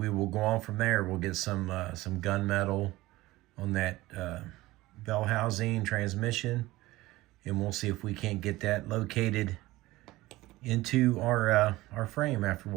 will go on from there. We'll get some gunmetal on that bell housing transmission, and we'll see if we can't get that located into our frame after a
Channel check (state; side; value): quieter; left; 18.5 dB